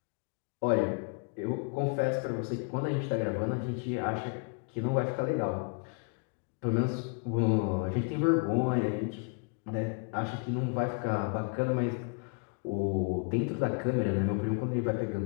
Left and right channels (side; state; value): right; quieter; 38.2 dB